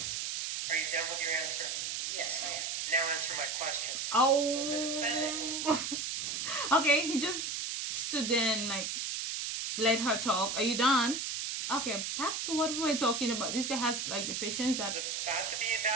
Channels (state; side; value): noise; right; hiss, 2 dB below the sound